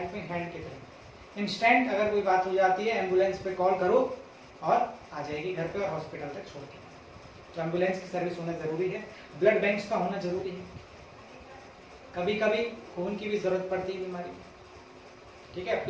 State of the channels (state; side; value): identical; both; correlation 1.00